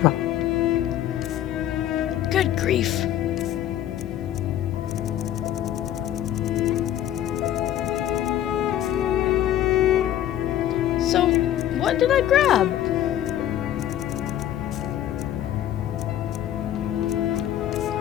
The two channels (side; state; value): right; quieter; 11.8 dB